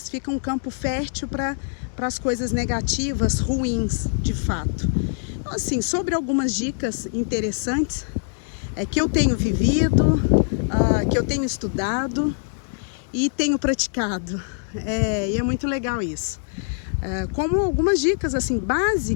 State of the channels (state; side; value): silent; right; 63 dB below the other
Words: fica um campo fértil para as coisas negativas, ruins, de fato. Então, assim, sobre algumas dicas interessantes que eu tenho vivido, que eu tenho estudado e tenho praticado, e é muito legal isso. Como algumas dicas assim